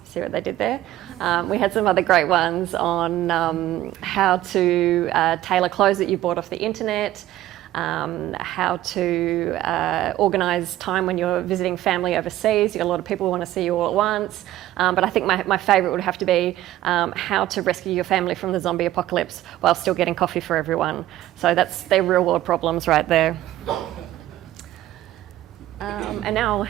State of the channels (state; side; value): quieter; left; 14.3 dB